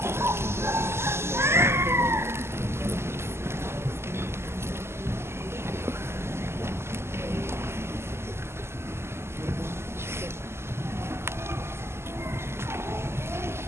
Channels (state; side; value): late; left; 0.12 ms